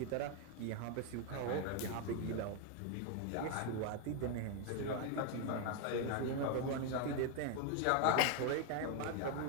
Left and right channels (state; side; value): different; both; correlation 0.01